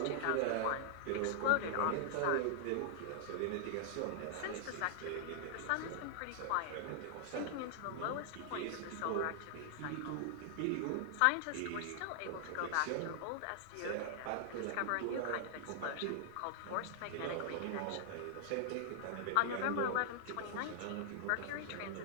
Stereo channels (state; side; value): different; both; correlation -0.01